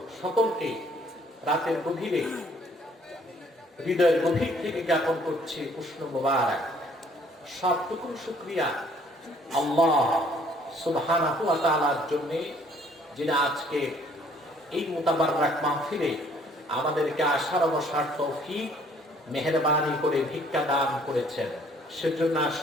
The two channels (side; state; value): both; normal; correlation 0.60